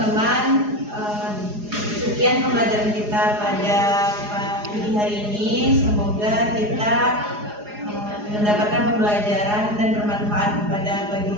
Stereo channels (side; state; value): left; late; 4.8 ms